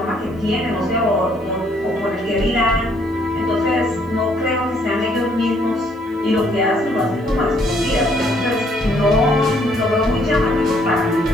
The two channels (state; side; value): normal; both; correlation 0.66